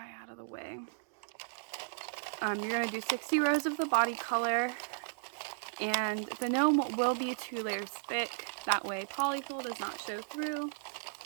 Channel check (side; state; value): left; silent; digital silence